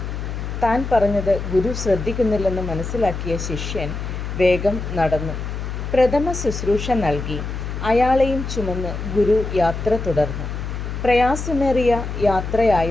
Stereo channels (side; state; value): left; noise; hum, 5 dB below the sound